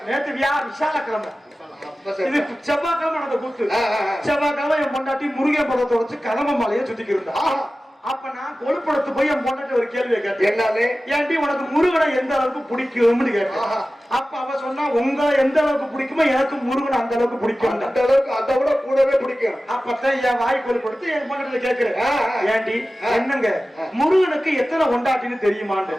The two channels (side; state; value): both; normal; correlation 0.96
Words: நேத்து விசால கிழமை. இது செவ்வாய்க்கிழமை நடந்த கூத்து. செவ்வாய்க்கிழமை என் பொண்டாட்டி முருகன் படத்தை வச்சு கலம மாலையை சுத்திக்கு இருந்தா. அப்ப நான் கொழுப்படத்து போய் என் பொண்டாட்டி ஒரு கேள்வியை கேட்டேன். என்னது? ஏன்டி உனக்கு முருகனை எந்த அளவுக்கு பிடிக்கும்னு கேட்டேன். அப்ப அவ சொன்னா, உங்களை எந்த அளவுக்கு பிடிக்குமோ எனக்கு முருகனை அந்த அளவுக்கு பிடிக்கும். அந்த அளவுக்கு அதை விட கூடவே பிடிக்கும். அப்பதான் என் வாய் கொழுப்படுத்து என் பொண்டாட்டில கேட்கிறேன், ஏன்டி என்னங்க முருகனுக்கு எத்தனை கொண்டாட்டின்னு தெரியுமான்னு.